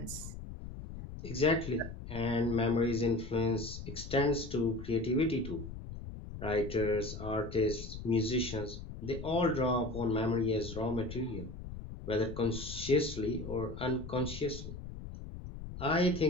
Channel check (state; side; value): noise; left; rumble, 10 dB below the sound